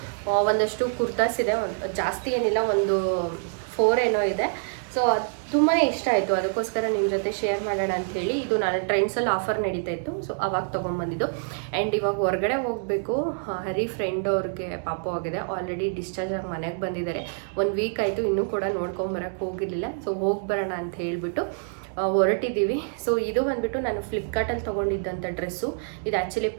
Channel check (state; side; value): silent; left; 61 dB below the other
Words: ಒಂದಷ್ಟು ಕುರ್ತಾಸ್ ಇದೆ, ಜಾಸ್ತಿ ಏನಿಲ್ಲ, ಒಂದು 4 ಏನೋ ಇದೆ. ಸೊ ಅದು ತುಂಬಾ ಇಷ್ಟ ಆಯಿತು, ಅದಕ್ಕೋಸ್ಕರ ನಿಮ್ಮ ಜೊತೆ ಶೇರ್ ಮಾಡೋಣ ಅಂಥೇಳಿ. ಇದು ನಾನು ಟ್ರೆಂಡ್ಸಲ್ಲಿ ಆಫರ್ ನಡೀತಾ ಇತ್ತು, ಸೊ ಅವಾಗ ತೊಗೊಂಬಂದಿದ್ದು. ಆ್ಯಂಡ್ ಇವಾಗ ಹೊರಗಡೆ ಹೋಗಬೇಕು. ಹರಿ ಫ್ರೆಂಡ್ ಅವ್ರಿಗೆ ಪಾಪು ಆಗಿದೆ, ಆಲ್ರೆಡಿ ಡಿಸ್ಚಾರ್ಜ್ ಆಗಿ ಮನೆಗೆ ಬಂದಿದ್ದಾರೆ. 1 ವೀಕ್ ಆಯಿತು, ಇನ್ನೂ ಕೂಡ ನೋಡ್ಕೊಂಬರಕ್ಕೆ ಹೋಗಿರಲಿಲ್ಲ. ಸೊ ಹೋಗಿ ಬರೋಣ ಅಂತ ಹೇಳಿಬಿಟ್ಟು ಹೊರಟಿದ್ದೀವಿ. ಸೊ ಇದು ಬಂದುಬಿಟ್ಟು ನಾನು ಫ್ಲಿಪ್ಕಾರ್ಟಲ್ಲಿ ತೊಗೊಂಡಿದ್ದಂಥ ಡ್ರೆಸ್ಸು. ಇದು ಆ್ಯಕ್ಚುಲಿ